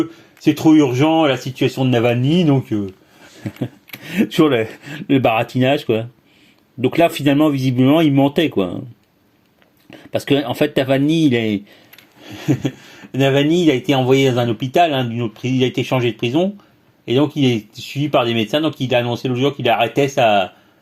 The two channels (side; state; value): both; identical; correlation 1.00